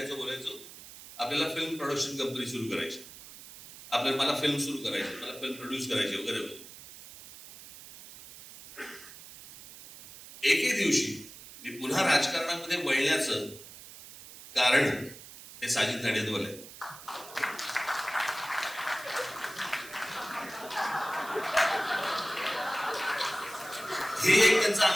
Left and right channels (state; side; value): noise; right; hiss, 16 dB below the sound